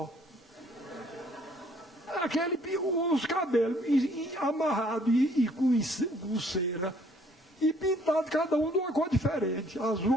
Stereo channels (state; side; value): normal; both; correlation 0.62